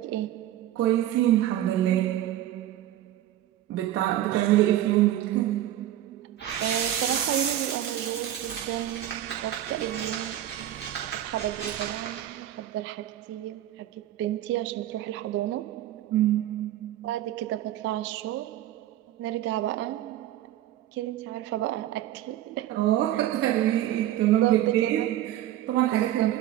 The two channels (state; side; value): quieter; left; 12.8 dB